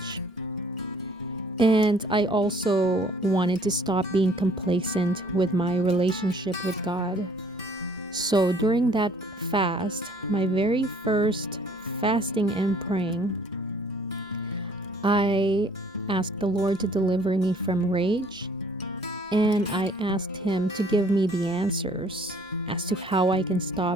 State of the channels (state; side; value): normal; both; correlation 0.57